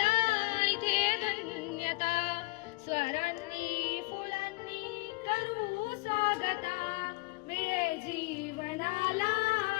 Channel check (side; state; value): right; quieter; 24.9 dB